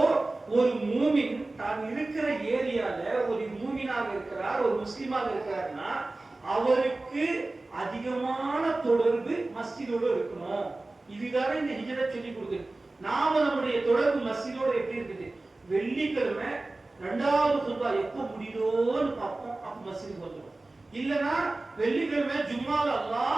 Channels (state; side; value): quieter; left; 3.0 dB